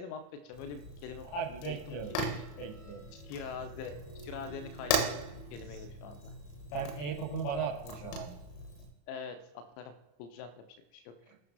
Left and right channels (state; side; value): late; right; 34 ms